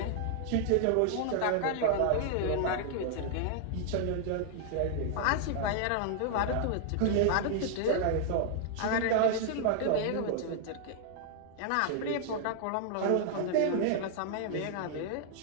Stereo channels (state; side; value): different; both; correlation 0.00